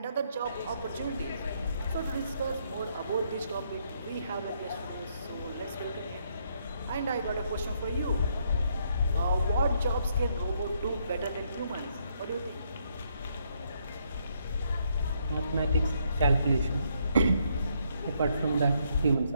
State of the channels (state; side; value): inverted; both; correlation -0.73